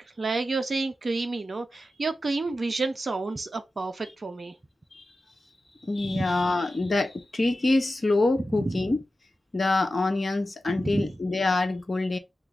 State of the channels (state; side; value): normal; both; correlation 0.93